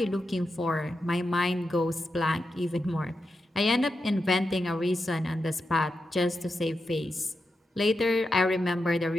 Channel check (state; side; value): normal; both; correlation 0.88